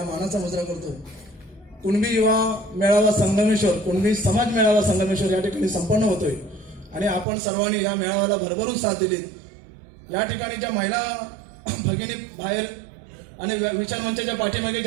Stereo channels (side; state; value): left; drops out; at 7.2 s